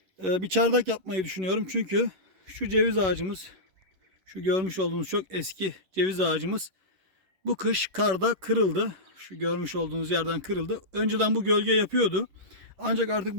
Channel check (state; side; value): late; left; 11 ms